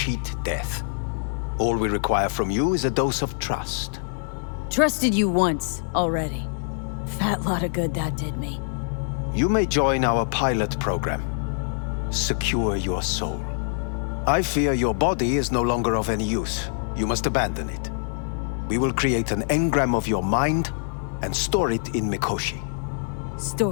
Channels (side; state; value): right; silent; 62 dB below the other